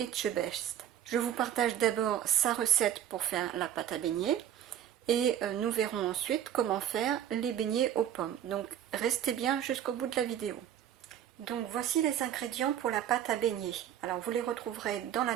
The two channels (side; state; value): left; quieter; 10.3 dB